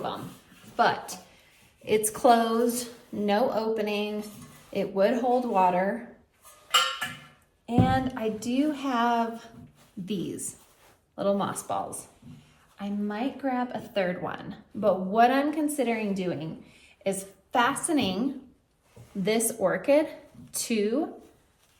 them, but it's closed, no opening. It would hold water. And I do have these little moss balls. I might grab a third one, but what I'm considering doing is fastening this orchid to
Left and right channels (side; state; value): both; identical; correlation 1.00